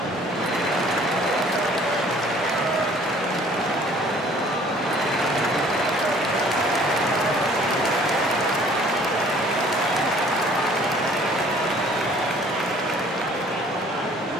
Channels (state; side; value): normal; both; correlation 0.55